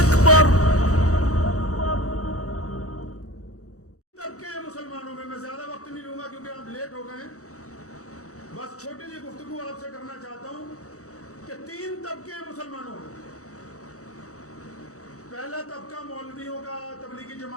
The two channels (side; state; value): right; late; 0.65 ms